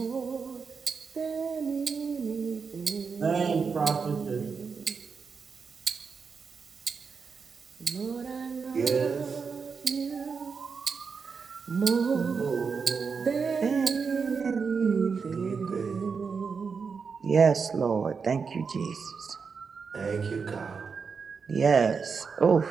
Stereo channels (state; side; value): quieter; left; 5.5 dB